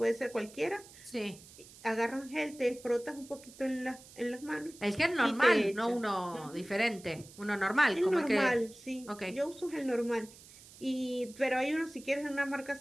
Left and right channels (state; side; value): noise; right; hiss, 20 dB below the sound